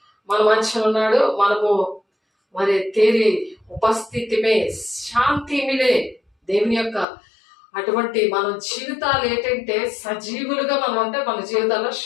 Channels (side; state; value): right; drops out; at 7.1 s